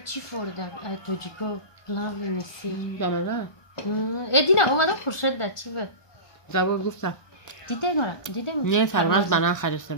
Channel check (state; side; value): late; right; 1.2 ms